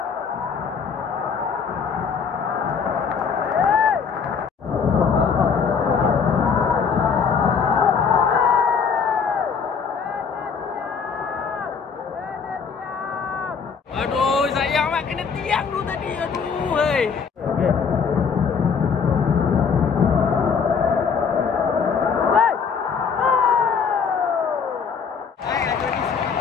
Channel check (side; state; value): right; quieter; 6.1 dB